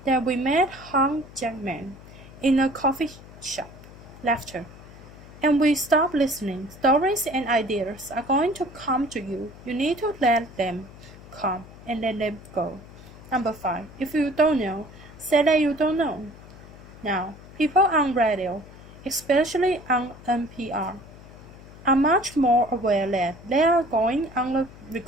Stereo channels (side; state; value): left; noise; hum, 19 dB below the sound